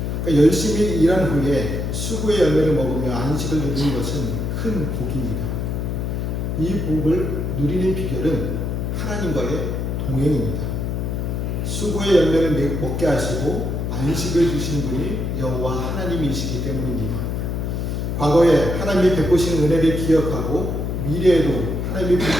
그러니까 열심히 일한 후에 수고의 열매를 먹으며 안식을 누리는 것은 큰 복입니다. 이 복을 누리는 비결은 하나님과의 동행입니다. 수고의 열매를 먹게 하시고 안식을 주시는 분이 여호와 하나님이시기 때문입니다. 과거에 하나님이 베푸신 은혜를 기억하고 미래에도 하나님이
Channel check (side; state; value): left; noise; hum, 2 dB below the sound